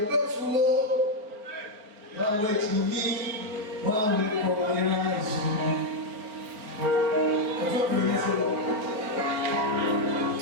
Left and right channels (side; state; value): left; late; 4.5 ms